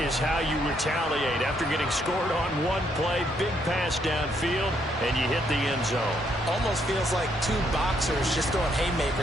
how you retaliate after getting scored on one play, big pass downfield, and you hit the end zone. Almost feels like two boxers just throwing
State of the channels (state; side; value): normal; both; correlation 0.73